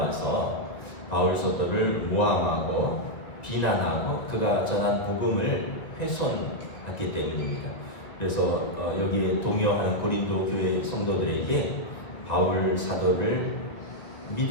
바울 사도를 모함하고 비난하고 그가 전한 복음을 훼손했기 때문입니다. 그래서 여기에 동요하는 고린도 교회 성도들에게 바울 사도를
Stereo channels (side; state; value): right; late; 1.8 ms